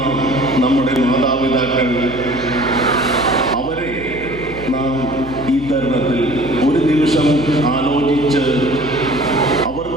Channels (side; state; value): left; noise; hum, 15 dB below the sound